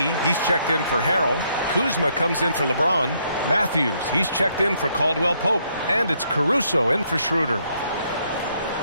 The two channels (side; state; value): both; inverted; correlation -0.72